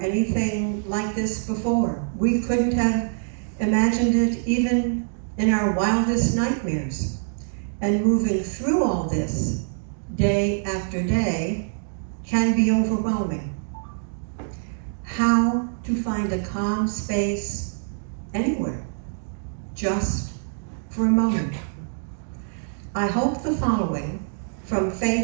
anything like this before. We couldn't have imagined it even in our wildest nightmares. And moving through all this, day after day, can be overwhelming. How to find a calm space anywhere, just for a moment. I hope the following, from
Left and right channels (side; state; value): left; silent; digital silence